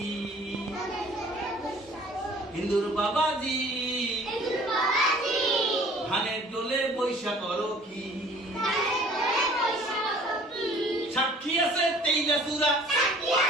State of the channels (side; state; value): both; normal; correlation 0.51